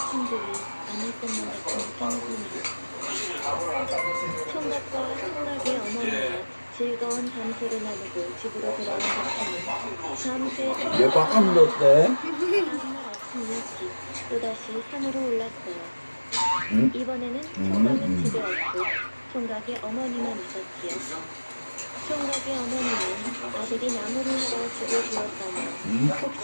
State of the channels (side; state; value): both; inverted; correlation -1.00